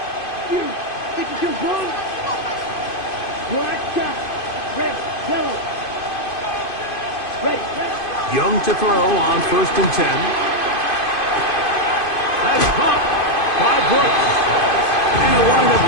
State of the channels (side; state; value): right; late; 2.5 ms